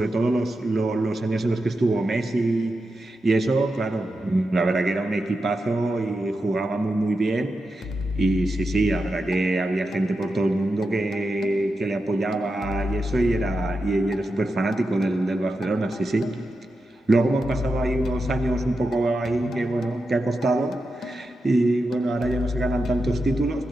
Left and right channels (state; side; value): normal; both; correlation 0.89